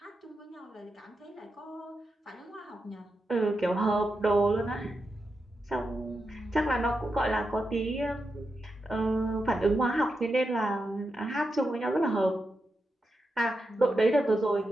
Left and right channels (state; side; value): normal; both; correlation 0.87